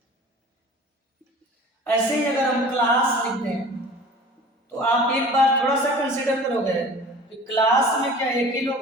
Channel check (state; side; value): normal; both; correlation 0.43